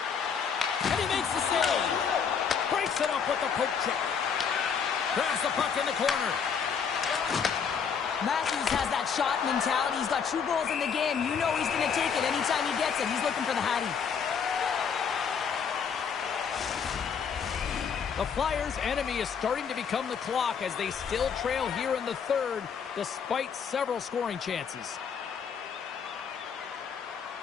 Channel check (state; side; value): quieter; right; 6.7 dB